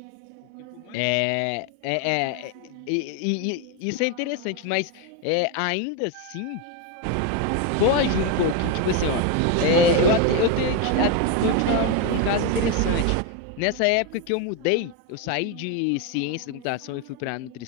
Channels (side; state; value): both; different; correlation 0.02